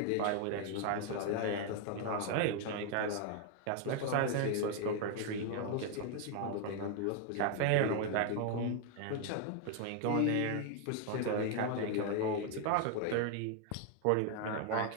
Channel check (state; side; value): different; both; correlation 0.01